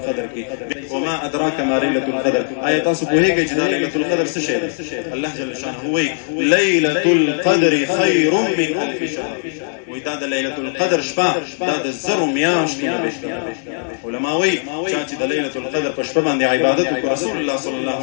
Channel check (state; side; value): silent; right; digital silence